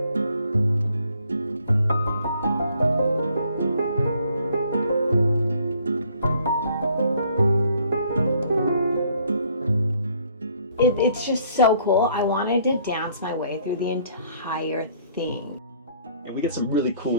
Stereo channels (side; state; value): both; inverted; correlation -0.62